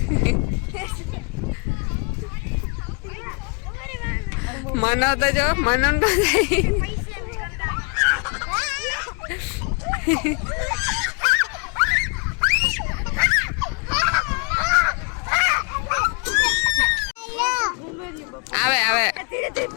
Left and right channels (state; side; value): quieter; right; 35.1 dB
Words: મનો તો જો મનો તો આવે આવે